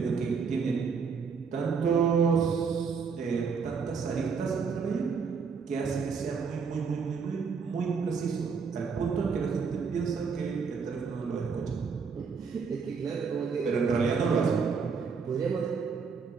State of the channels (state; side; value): quieter; left; 5.6 dB